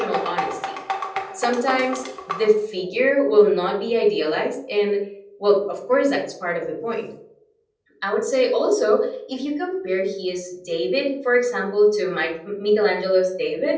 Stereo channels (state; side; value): identical; both; correlation 1.00